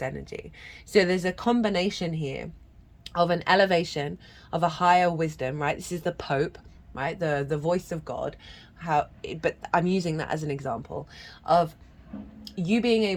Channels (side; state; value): both; identical; correlation 1.00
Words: energy. So there's a combination here of an elevation of a higher wisdom, right? This is the Pope, right? The voice of God. But I'm using that as an example of you being